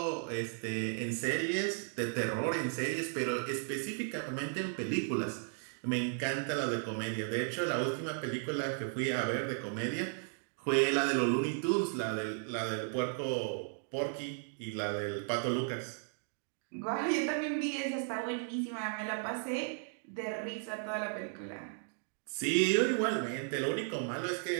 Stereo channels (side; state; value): left; silent; 54 dB below the other